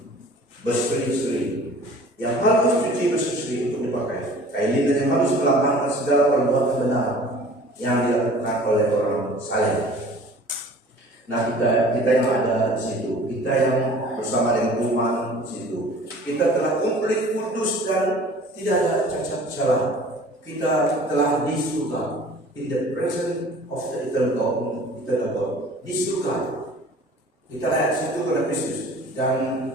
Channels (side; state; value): both; normal; correlation 0.47